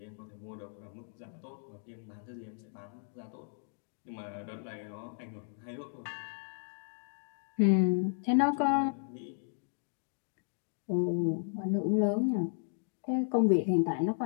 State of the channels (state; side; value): silent; right; digital silence